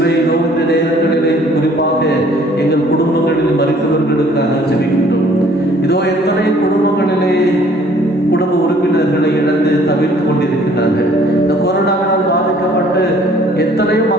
இதோ இந்த நேரங்களிலே குறிப்பாக எங்கள் குடும்பங்களில் மறித்தவர்களுக்காக ஜெபிக்கின்றோம். இதோ எத்தனை குடும்பங்களிலே குடும்ப உறுப்பினர்களை இழந்து தவிர்த்து கொண்டிருக்கிறார்கள். இந்த கொரோனாவினால் பாதிக்கப்பட்டு எத்தனையோ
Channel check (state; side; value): normal; both; correlation 0.57